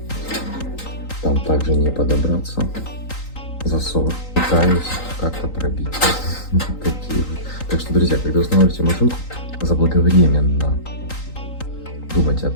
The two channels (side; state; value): right; late; 3.9 ms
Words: Там также не подобраться. Засов. Пытаюсь как-то пробить. Такие вот. Так что, друзья, когда устанавливаете машинку, заблаговременно думать о